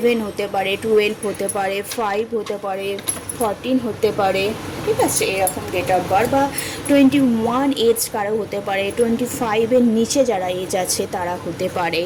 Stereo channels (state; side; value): identical; both; correlation 1.00